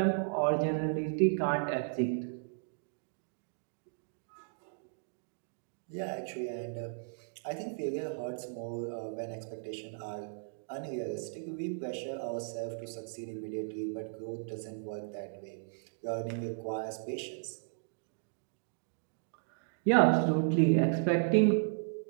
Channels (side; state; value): left; silent; digital silence